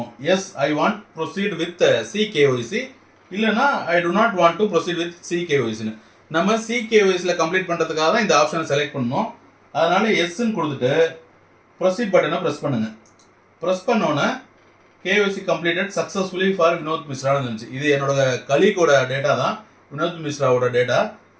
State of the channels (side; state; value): both; identical; correlation 1.00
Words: Yes I want proceed with CKYC, இல்லைனா I do not want to proceed with CKYCன்னு. நம்ம CKYCயில் கம்ப்ளீட் பண்ணுறதுக்காக தான் இந்த ஆப்ஷனை செலக்ட் பண்ணணும். அதனால எஸ்ன்னு கொடுத்துட்டு ப்ரொசீட் பட்டனை ப்ரெஸ் பண்ணுங்க. ப்ரெஸ் பண்ணோன்னே KYC completed successfully for Vinod மிஸ்ரான்னு இருந்துச்சு. இது என்னோட கலீகோட டேட்டா தான், வினோத் மிஸ்ராவோட டேட்டா.